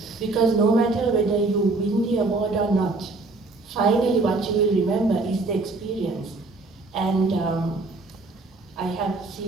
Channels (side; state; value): left; quieter; 3.4 dB